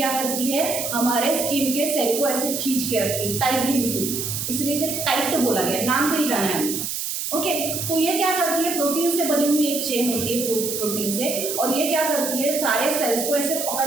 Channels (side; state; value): right; noise; hiss, 3 dB below the sound